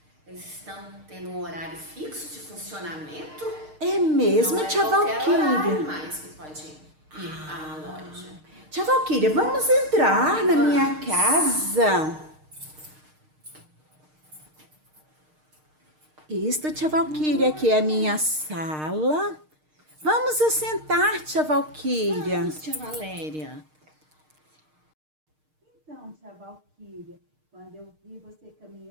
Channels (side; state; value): left; late; 6.5 ms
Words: eles estão tendo um horário fixo de funcionamento? É Não mesmo, é tia qualquer horário Valquíria? mais que pode ir à loja. Tia Valquíria, vamos entrar na minha Vamos. casa. Isto, tia Valquíria, aqui é a minha sala. Vamos assentar, tia Valquíria. Vamos, tia Valéria. Então, tia Valquíria, quando eu vi você